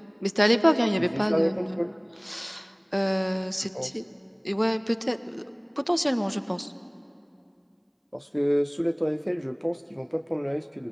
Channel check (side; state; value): both; identical; correlation 1.00